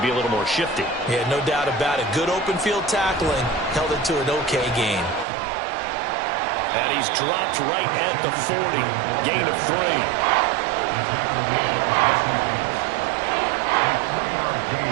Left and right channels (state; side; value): drops out; left; at 5.2 s